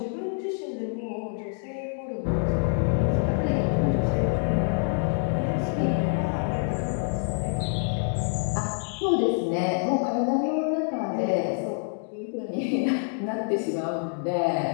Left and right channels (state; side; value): silent; right; 60 dB below the other